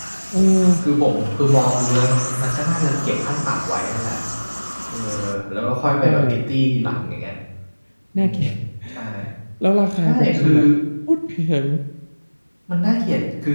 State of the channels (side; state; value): both; inverted; correlation -1.00